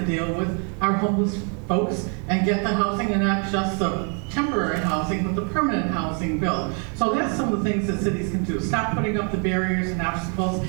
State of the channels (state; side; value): quieter; left; 39.8 dB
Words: deal with our homeless folks and get the housing, and not just the temporary housing, but the permanent housing built. So that's some of the things that cities can do. Stop putting up the barriers and obstacles.